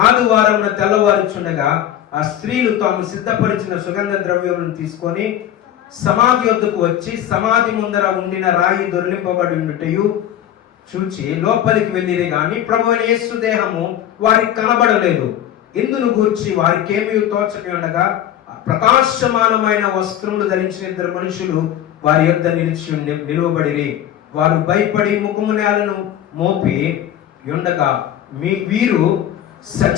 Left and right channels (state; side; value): quieter; right; 11.3 dB